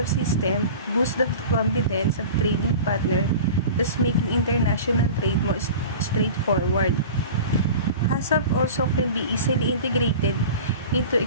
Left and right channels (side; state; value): both; inverted; correlation -0.36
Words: system boosts the confidence of trading partners, thus making international trade more straightforward. HACCP also can be easily integrated into